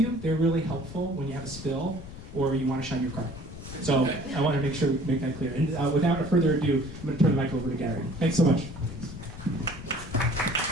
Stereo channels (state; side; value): noise; left; rumble, 13 dB below the sound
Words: They're really helpful when you have a spill or you want to shine your car. So I want to make sure we make that clear. And without further ado, I'm going to turn the mic over to Gary. Thanks so much.